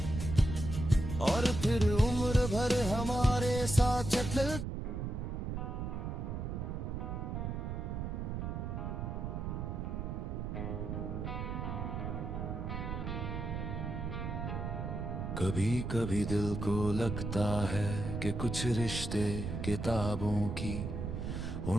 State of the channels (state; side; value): noise; right; rumble, 4 dB below the sound